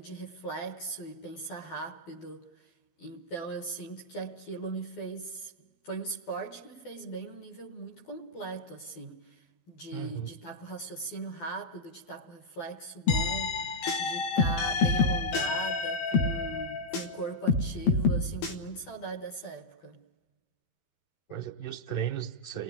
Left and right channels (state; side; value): late; right; 12 ms